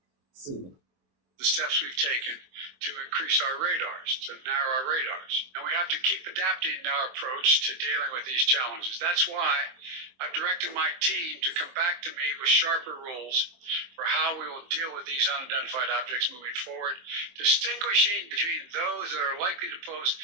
So the steps we've taken to increase our radars, to narrow our radars. And we have to keep adapting our approach to dealing with these challenges. That's why I've directed my team to come back to me with sharper rules for how we will deal with these unidentified objects moving forward, distinguishing between those that are likely to pose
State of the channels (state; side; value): late; left; 24 ms